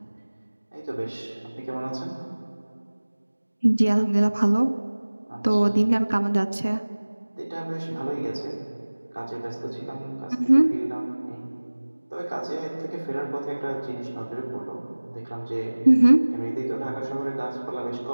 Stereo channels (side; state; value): both; inverted; correlation -1.00